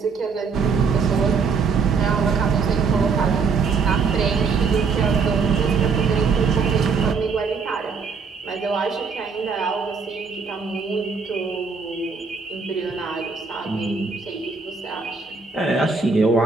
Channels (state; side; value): quieter; left; 5.1 dB